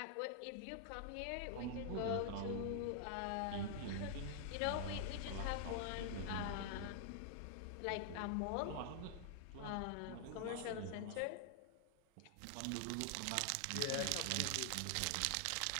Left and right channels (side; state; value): both; different; correlation 0.00